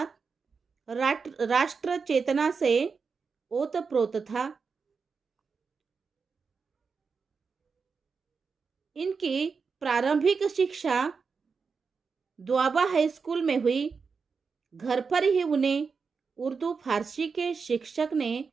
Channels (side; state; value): left; quieter; 5.2 dB